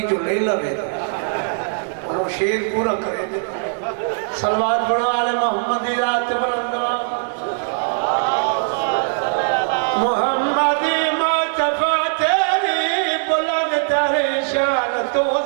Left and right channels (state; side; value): silent; left; 66 dB below the other